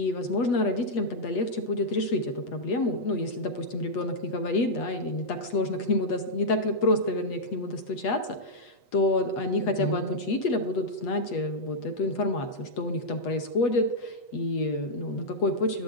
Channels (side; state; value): right; late; 8.2 ms